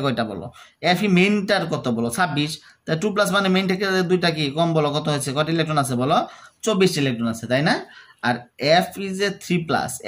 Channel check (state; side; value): identical; both; correlation 1.00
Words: কয়টা বলো এফি মেইনটার কত বলো 26 তা 2 প্লাস মানে মেইন থেকে দুইটা কি কম বলো কত হয়েছে কত ইলেকট্রন আছে বলো 24 ইলেকট্রন আছে তাই না আর এফ ইজ এ 3 প্লাস